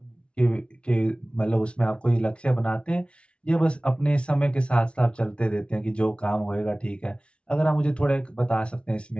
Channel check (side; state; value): right; late; 0.059 ms